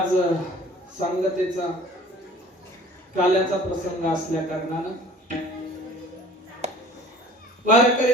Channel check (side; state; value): both; normal; correlation 0.48